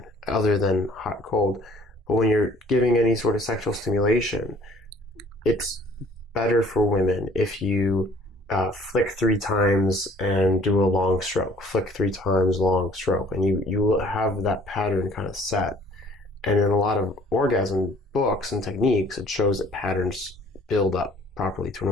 other than hot, cold, but when you're giving any sort of sexual stimulation, it's better for women if you flick 3 times and do a long stroke, flick 3 times, long stroke, and you will have that pattern kind of set. And in a lot of orgasm books and techniques, it shows that patterns build up properly to an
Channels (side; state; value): both; normal; correlation 0.56